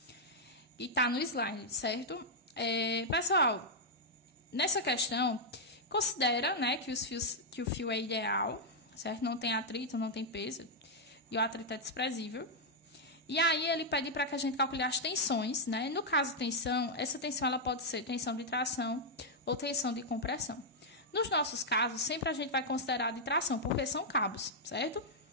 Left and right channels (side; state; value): both; normal; correlation -0.04